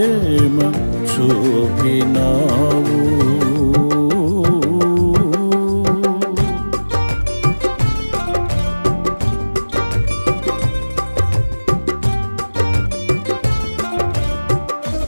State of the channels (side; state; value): both; inverted; correlation -1.00